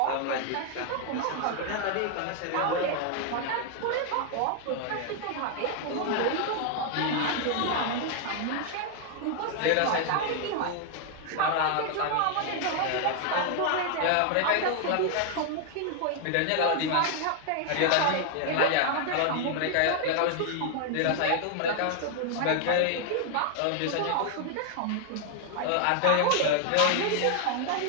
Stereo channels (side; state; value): both; different; correlation 0.00